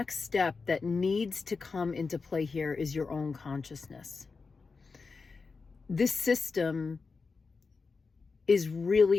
step that needs to come into play here is your own consciousness. This system is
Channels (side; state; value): right; quieter; 4.6 dB